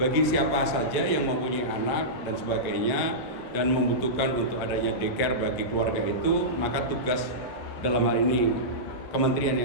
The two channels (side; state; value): both; normal; correlation -0.15